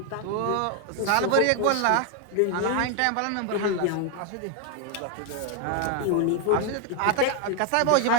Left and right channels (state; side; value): different; both; correlation 0.01